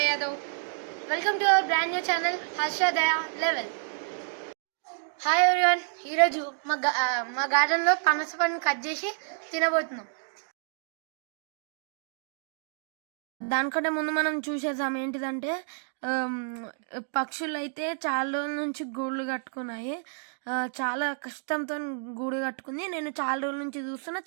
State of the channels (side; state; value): left; silent; digital silence